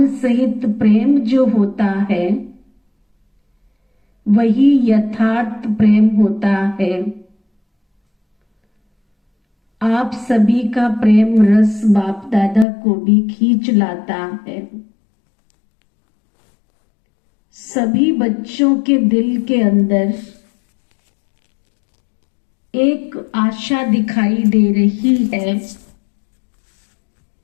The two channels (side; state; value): right; drops out; at 12.7 s